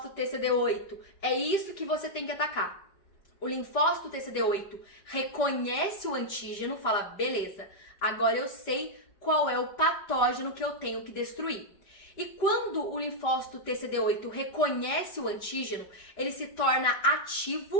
TCD8, é isso que você tem que atacar. O linfócito TCD8 reconhece o antígeno, fala, beleza, agora eu sei qual é o patógeno que eu tenho que destruir. E quando o linfócito TCD8 reconhece o antígeno, ele se torna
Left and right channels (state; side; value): late; right; 5.1 ms